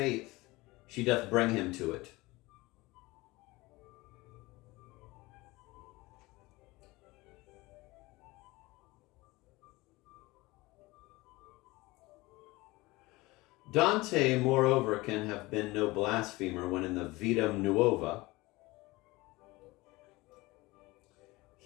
she doth bring him to it. Dante, moreover, can have been no blasphemer when in the Vita Nuova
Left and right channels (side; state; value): right; quieter; 21.4 dB